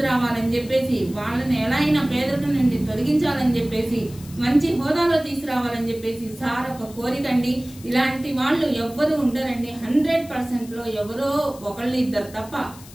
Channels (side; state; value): left; noise; hiss, 20 dB below the sound